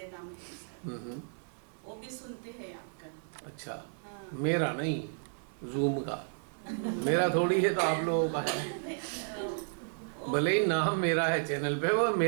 नाम है, वो भी सुनते हैं आपका। अच्छा, हाँ। मेरा नहीं, जूम का, मेरा थोड़ी है, तो आप लोगों का है। भले ही नाम मेरा है चैनल पे, वो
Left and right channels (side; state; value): left; silent; digital silence